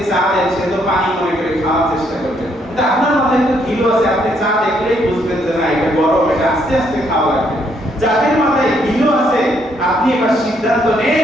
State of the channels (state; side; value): normal; both; correlation 0.71